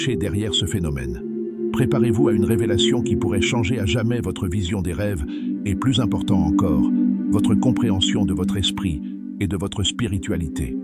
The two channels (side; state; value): both; identical; correlation 1.00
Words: derrière ce phénomène. Préparez-vous à une révélation qui pourrait changer à jamais votre vision des rêves et, plus important encore, votre compréhension de votre esprit et de votre spiritualité.